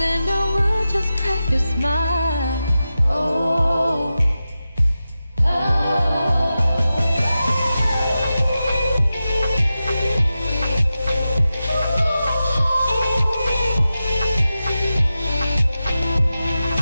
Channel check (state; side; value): inverted; both; correlation -0.92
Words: I will just crack a smile.